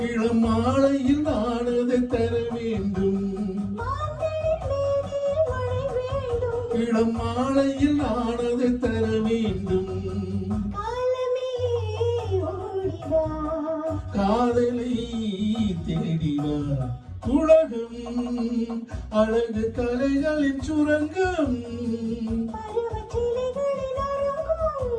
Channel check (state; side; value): identical; both; correlation 1.00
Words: இளம் மாலையில் நானதை தர வேண்டும் இளம் மாலையில் நானதை தர வேண்டும் காதலை தேடிவா உலகம் அழகு கலைகளின் சுரங்கம்